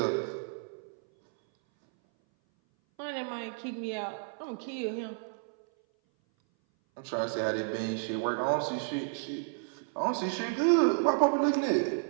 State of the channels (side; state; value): left; silent; 57 dB below the other